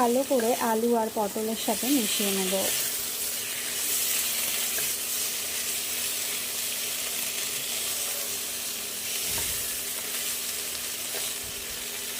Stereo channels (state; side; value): identical; both; correlation 1.00